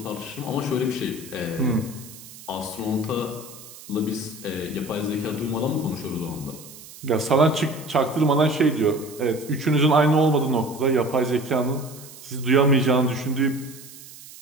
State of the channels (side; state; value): right; noise; hiss, 17 dB below the sound